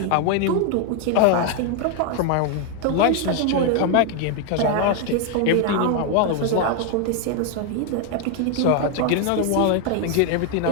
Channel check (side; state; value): both; different; correlation 0.01